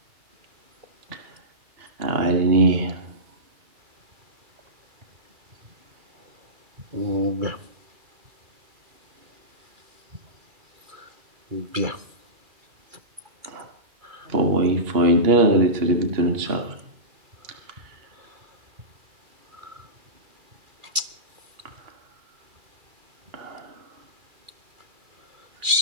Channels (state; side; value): late; left; 2.3 ms